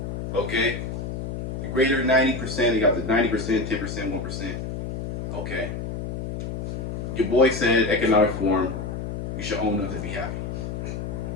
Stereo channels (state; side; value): noise; left; hum, 5 dB below the sound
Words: Okay. The greater 90%. You got the 90%, 10%, 1%. Okay. Your boy said economic reform. You should own nothing to be